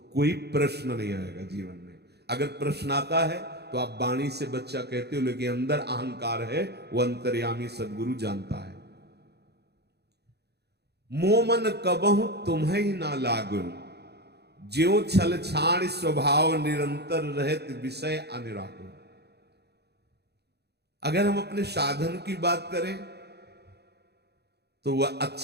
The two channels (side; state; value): left; late; 0.48 ms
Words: कोई प्रश्न नहीं आएगा जीवन में। अगर प्रश्न आता है तो आप वाणी से बच्चा कहते हो, लेकिन अंदर अहंकार है, वो अंतर्यामी सदगुरु जानता है। मोमन कबहु तुम्हें ही ना लागु, ज्यों छल छाण स्वभाव निरंतर रहत विषय अनिराकुल। अगर हम अपने साधन की बात करें तो वह